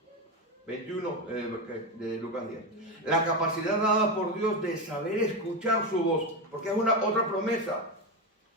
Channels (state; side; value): normal; both; correlation 0.14